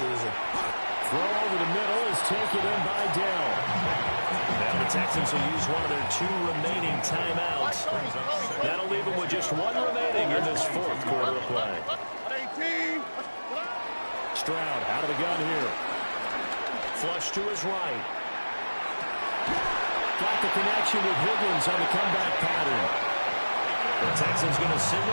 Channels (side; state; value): both; inverted; correlation -1.00